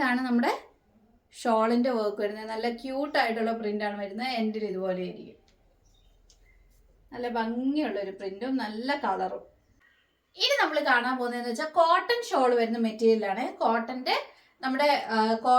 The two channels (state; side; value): identical; both; correlation 1.00